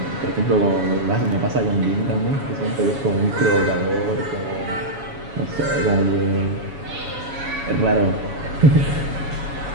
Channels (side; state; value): left; late; 7.1 ms